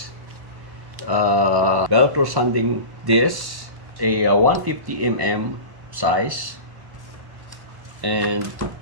Velcro sanding disc, a 150 mm size, and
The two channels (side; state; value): left; late; 1.1 ms